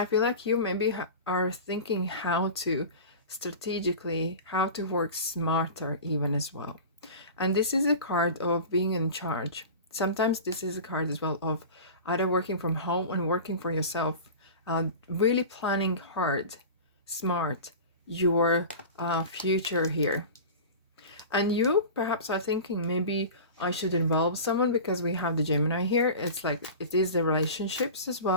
feel like you maybe are thinking how to strategically, how to work smarter even as well. And this is a card of being in charge. Sometimes this is a card as well of either working from home and working for yourself, really planning hard, smart, your future here. And you perhaps are thinking, maybe I should involve someone because we have the Gemini here. It's like, it is the relationships as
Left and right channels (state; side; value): inverted; both; correlation -0.33